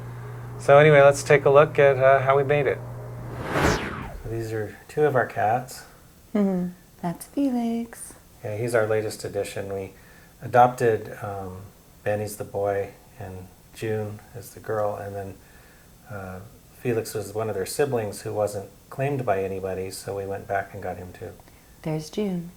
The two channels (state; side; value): identical; both; correlation 1.00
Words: So anyway, let's take a look at how we made it. So these are two of our cats. That's Felix. Yeah, he's our latest addition. We adopted Benny's the boy, and June is the girl, and then Felix was one of their siblings who wasn't claimed by anybody, so we went back and got him too. There's June.